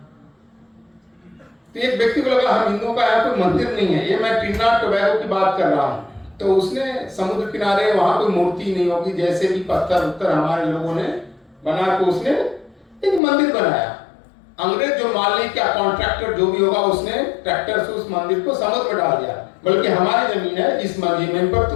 तो एक व्यक्ति को लगा हम हिंदुओं का यहाँ कोई मंदिर नहीं है, ये मैं ट्रिनिडाद टोबैगो की बात कर रहा हूँ, तो उसने समुद्र किनारे वहां कोई मूर्ति नहीं होगी, जैसे भी पत्थर उत्तर हमारे लोगों ने बना के उसने एक मंदिर बनाया। अंग्रेज जो मालिक या कॉन्ट्रैक्टर जो भी होगा, उसने ट्रैक्टर से उस मंदिर को समुद्र में डाल दिया, बल्कि हमारी जमीन है, इस जमीन पर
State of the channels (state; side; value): drops out; right; at 13.2 s